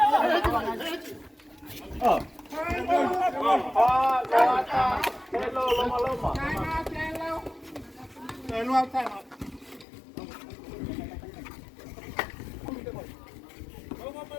Oh. Loata. Hello, Lomaloma.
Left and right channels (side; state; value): right; drops out; at 9.9 s